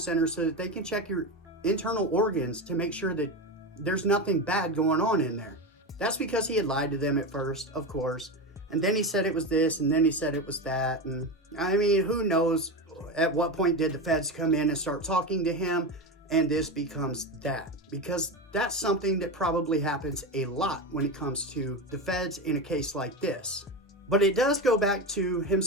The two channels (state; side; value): normal; both; correlation 0.19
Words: so that they can check your internal organs to make sure that there's nothing bad going on in there. That's because he had lied to them at first, of course. And then he said it was this, and then he said it was that. And I mean, who knows at what point did the feds come in and start talking to him and this becomes that? Because that's something that probably happens a lot when it comes to the feds in a case like this. But it does go back to him